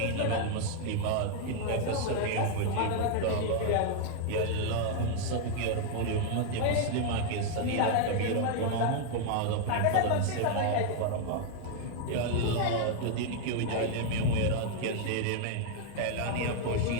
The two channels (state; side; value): different; both; correlation 0.00